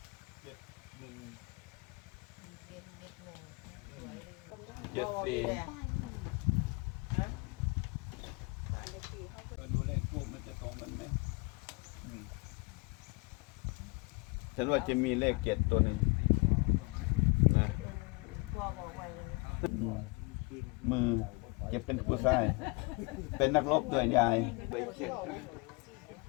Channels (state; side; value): quieter; right; 28.4 dB